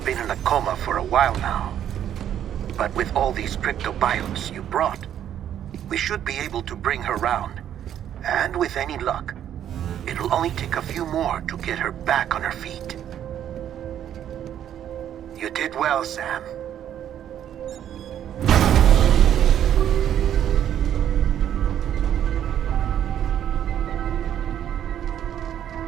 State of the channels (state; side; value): quieter; left; 10.3 dB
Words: in a coma for a while now. But with all these cryptobiotes you brought, we should be able to bring her round. And with any luck, it'll only take a few more to get her back on her feet. You did well, Sam.